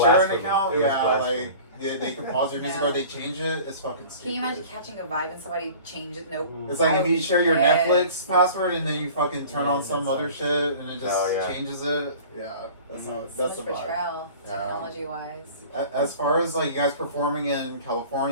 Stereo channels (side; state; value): both; inverted; correlation -0.43